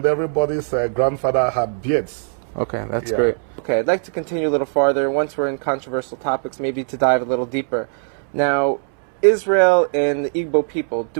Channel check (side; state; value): left; silent; 66 dB below the other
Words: everybody's grandfather had beards. Okay, that's great. Okay, I'd like to continue a little farther. Once we're in controversial topics, maybe to dive a little deeper. Now, Israel and the Igbo people,